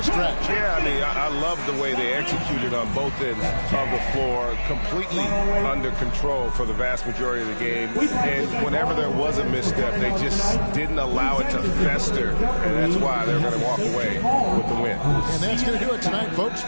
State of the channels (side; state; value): both; inverted; correlation -1.00